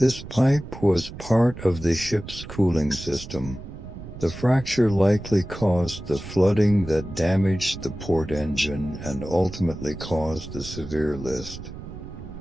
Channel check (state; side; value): noise; right; rumble, 12 dB below the sound